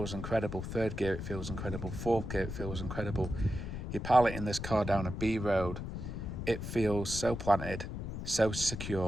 incredible. Third gear, it feels incredible. Fourth gear, it feels incredible. You're piloting this car down a B road. It feels so planted, so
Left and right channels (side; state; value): left; noise; rumble, 6 dB below the sound